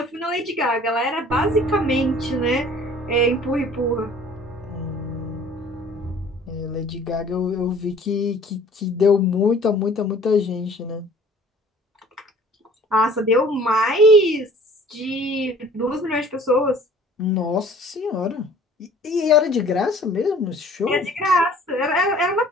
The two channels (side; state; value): both; normal; correlation 0.51